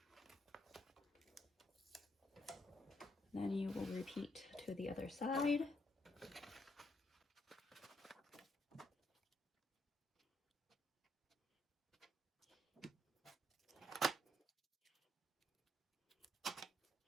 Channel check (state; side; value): normal; both; correlation 0.75